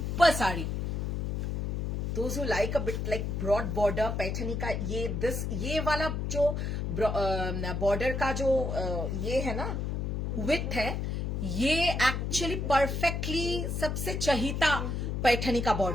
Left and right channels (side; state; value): left; noise; hum, 1 dB below the sound